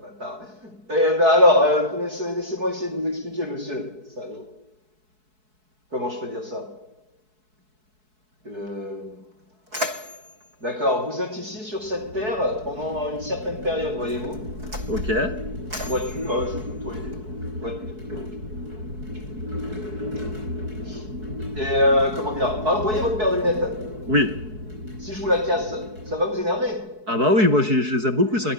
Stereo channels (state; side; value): late; left; 4.6 ms